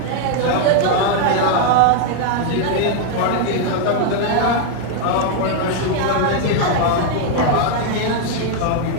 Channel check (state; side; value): different; both; correlation 0.00